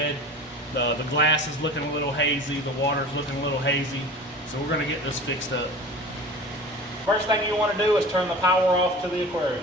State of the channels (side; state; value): both; normal; correlation 0.37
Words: The glass is looking a little hazy, the water's looking a little hazy, so we're going to get this fixed up. First thing you want to do is turn the power off to the aquarium.